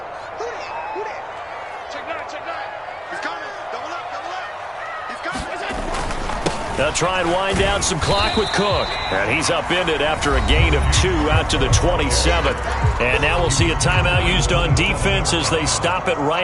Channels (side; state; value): both; identical; correlation 1.00